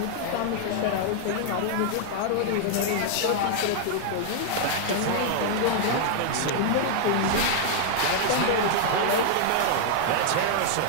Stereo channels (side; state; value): both; different; correlation -0.01